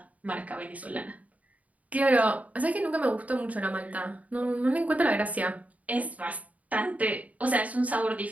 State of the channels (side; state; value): left; late; 0.071 ms